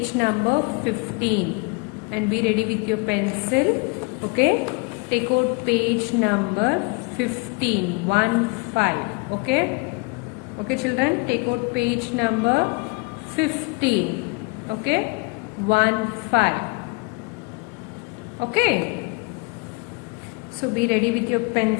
number 15 and be ready with your pencil. Okay, take out page number 15, 1-5. Okay children, take out page number 15. Okay, 1-5. Okay, so be ready with your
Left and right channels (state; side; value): quieter; right; 28.9 dB